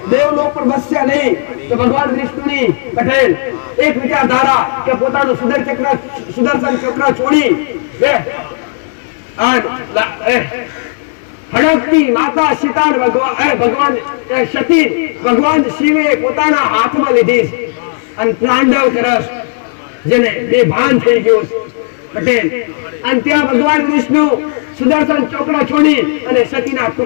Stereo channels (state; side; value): silent; right; digital silence